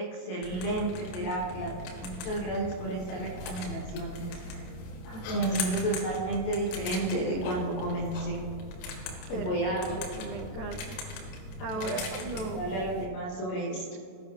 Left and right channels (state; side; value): late; right; 28 ms